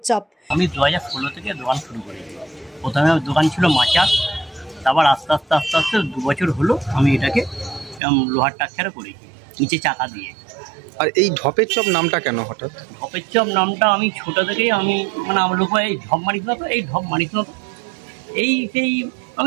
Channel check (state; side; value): drops out; left; at 8.0 s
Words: চপ। আমি 2016 থেকে দোকান শুরু করেছি। প্রথমে দোকান ছিল মাচার, তারপর আস্তে আস্তে 2 বছর হলো আমি এটাকে লোহার টাক্সারে করেছি, নিচে চাকা দিয়ে। আর এই ঢপের চপ নামটা কেন হঠাৎ? ঢপের চপ নামটা আমি ছোটো থেকেই আমার লোক এই ঢপ মারিস না তো, এই ঢপ মারিস না তো, সেই